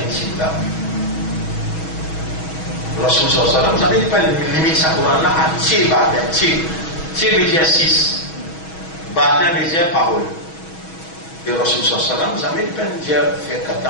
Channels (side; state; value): right; late; 6.2 ms